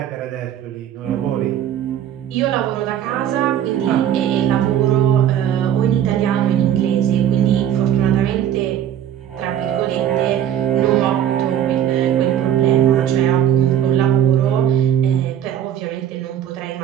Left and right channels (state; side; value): quieter; left; 10.3 dB